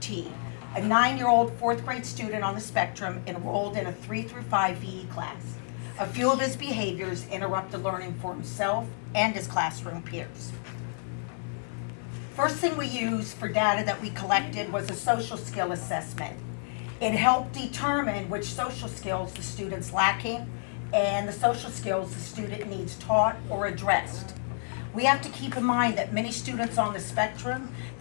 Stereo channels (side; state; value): right; silent; 58 dB below the other